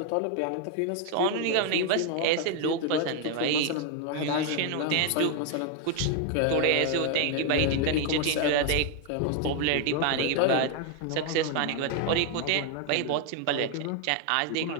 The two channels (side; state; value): both; different; correlation 0.01